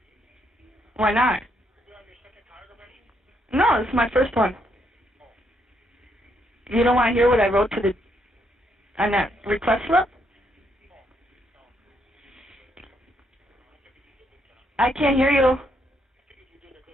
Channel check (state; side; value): normal; both; correlation 0.75